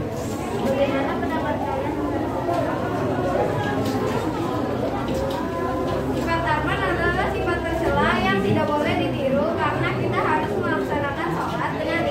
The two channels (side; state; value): both; identical; correlation 1.00